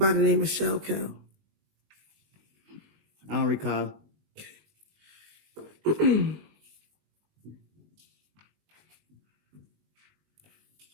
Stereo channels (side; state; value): left; late; 19 ms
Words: the name of Shell Cal? I don't recall.